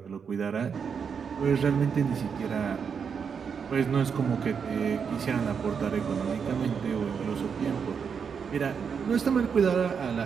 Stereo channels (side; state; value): left; quieter; 6.5 dB